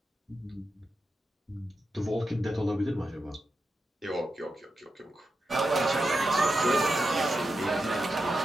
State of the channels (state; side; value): normal; both; correlation 0.88